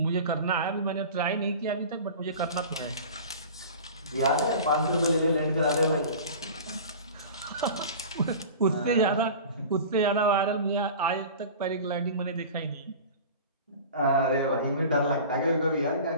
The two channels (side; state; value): both; inverted; correlation -0.37